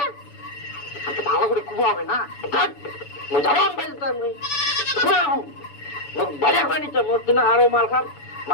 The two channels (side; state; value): right; late; 7.0 ms